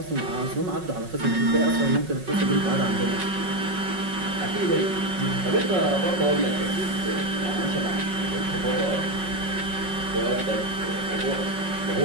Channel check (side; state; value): left; late; 5.4 ms